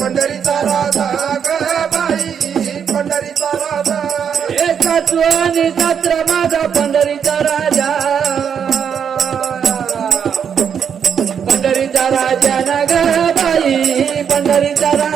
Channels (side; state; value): left; quieter; 7.6 dB